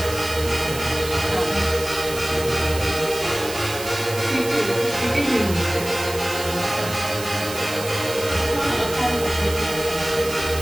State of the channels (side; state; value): right; noise; hiss, 10 dB below the sound